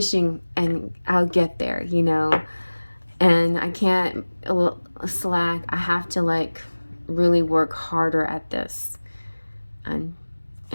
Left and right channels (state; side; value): inverted; both; correlation -1.00